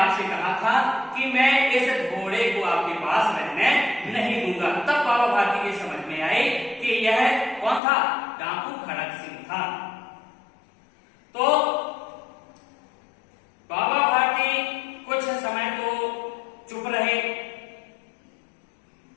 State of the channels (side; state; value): right; drops out; at 7.8 s